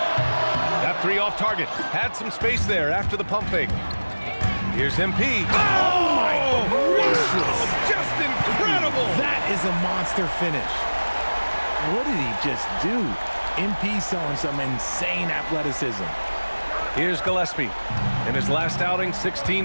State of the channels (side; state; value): both; inverted; correlation -1.00